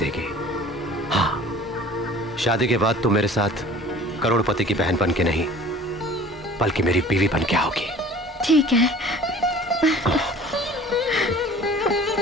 हाँ, शादी के बाद तुम मेरे साथ करोड़पति की बहन बन के नहीं, बल्कि मेरी बीवी बन के आओगी। ठीक है।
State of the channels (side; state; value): both; normal; correlation 0.47